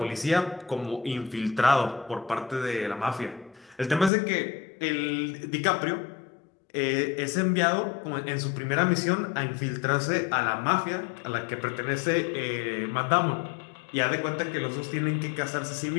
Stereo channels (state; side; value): drops out; right; at 4.1 s